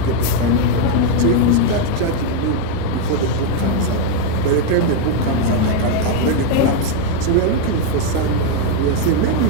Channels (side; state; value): both; different; correlation 0.01